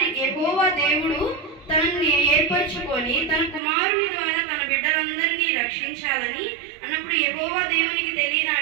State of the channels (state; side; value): drops out; left; at 3.6 s